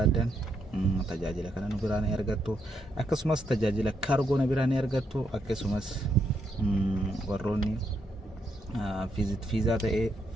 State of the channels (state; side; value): normal; both; correlation 0.78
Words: تجاجل كنا نبراني أرغتو أكسمس تجاجل كارغو نبراني أرغتو أكسمس وروني fiizaa ta'ee